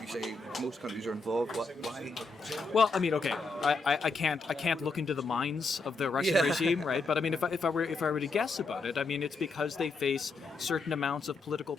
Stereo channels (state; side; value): quieter; right; 3.8 dB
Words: say most countries are involved? Why? Well, I mean, okay, I can't look into the minds of the Russian regime, right? But I mean, if I were to guess about it, I mean, it's because they face certain amounts of political